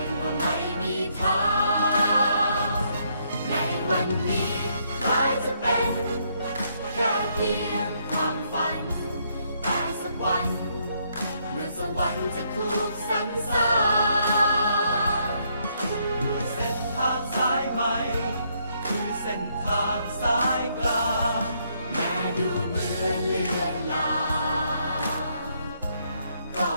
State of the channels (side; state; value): both; inverted; correlation -0.73